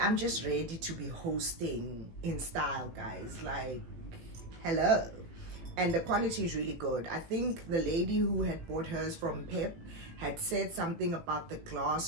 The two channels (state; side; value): late; left; 18 ms